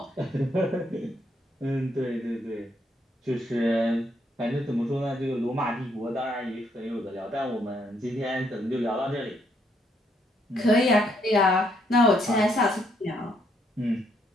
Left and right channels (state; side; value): normal; both; correlation 0.72